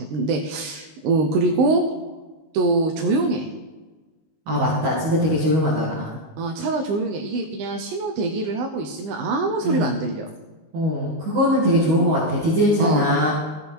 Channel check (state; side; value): late; left; 19 ms